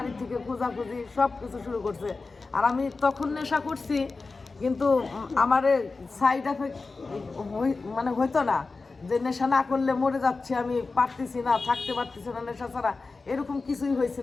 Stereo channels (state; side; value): quieter; right; 3.9 dB